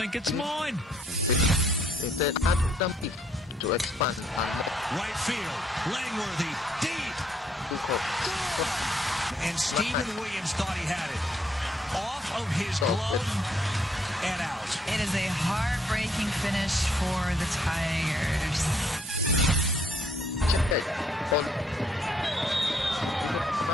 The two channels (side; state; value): both; normal; correlation 0.69